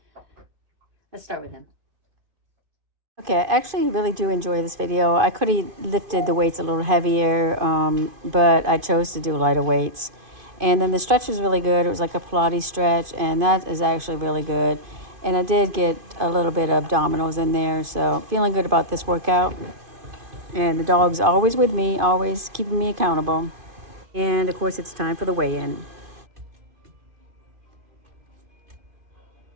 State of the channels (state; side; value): late; left; 2.5 ms